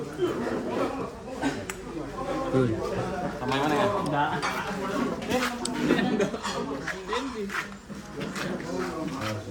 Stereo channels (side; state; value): both; identical; correlation 1.00